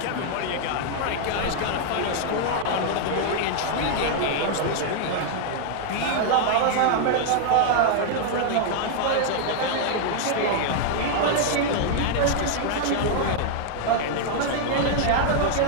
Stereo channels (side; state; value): both; different; correlation 0.00